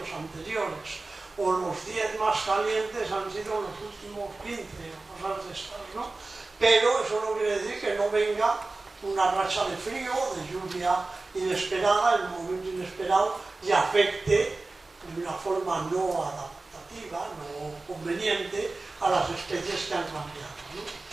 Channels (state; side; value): quieter; left; 3.4 dB